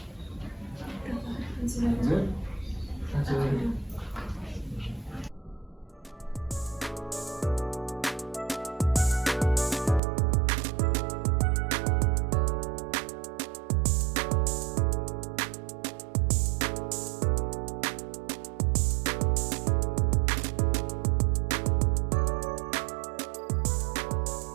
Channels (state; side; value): drops out; left; at 10.0 s